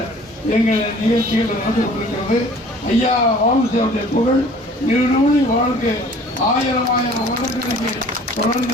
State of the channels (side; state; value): both; normal; correlation 0.50